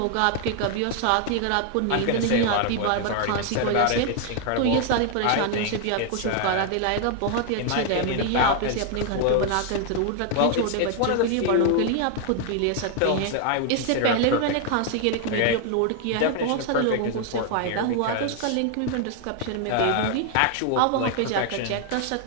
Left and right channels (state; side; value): different; both; correlation 0.00